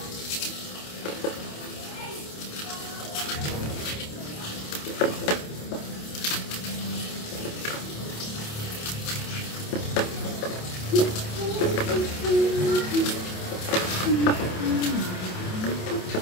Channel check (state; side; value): late; right; 27 ms